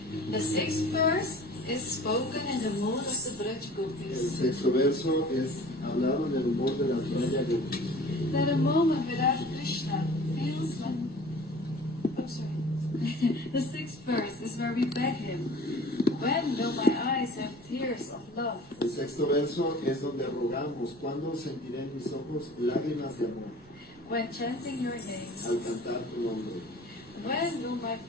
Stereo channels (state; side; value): normal; both; correlation 0.45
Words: The sixth verse is spoken in the mood of the Braj El Gopis. sexto verso es hablado en el humor de las Braya Gopis. That a moment without Krishna feels like... Oh, sorry. The sixth verse is where we beg him, when will my eyes have tears of love? El sexto verso es donde rogamos, ¿cuándo sentiré en mis ojos lágrimas de amor When chanting your names, al cantar tu nombre? when will my